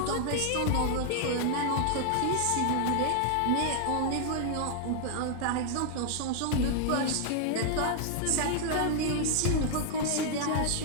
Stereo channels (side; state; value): both; different; correlation 0.00